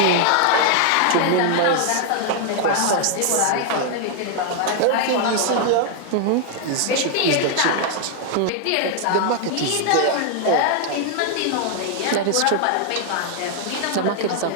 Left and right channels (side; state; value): both; different; correlation 0.00